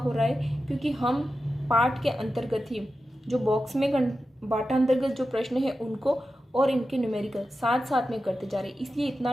रहा है क्योंकि हम पार्ट के अंतर्गत ही जो बॉक्स में बाटा अंतर्गत जो प्रश्न है उनको और इनके न्यूमेरिकल साथ साथ में करते जा रहे हैं, इसलिए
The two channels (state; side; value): normal; both; correlation 0.92